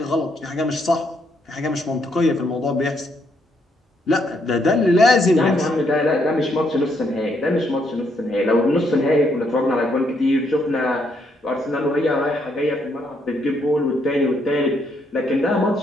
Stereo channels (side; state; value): both; normal; correlation 0.74